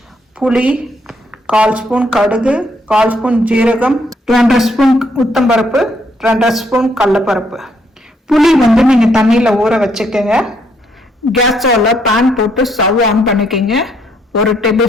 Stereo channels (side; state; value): both; normal; correlation 0.71